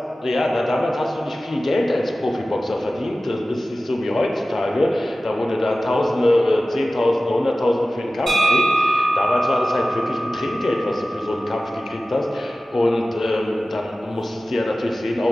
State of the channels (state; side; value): normal; both; correlation 0.96